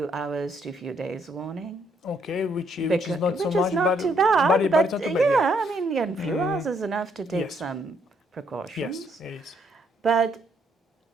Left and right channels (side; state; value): both; normal; correlation 0.71